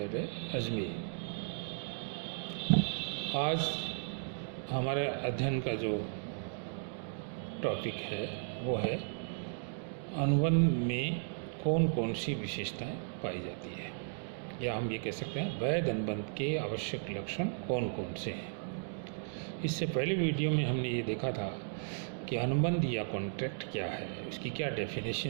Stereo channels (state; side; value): silent; left; digital silence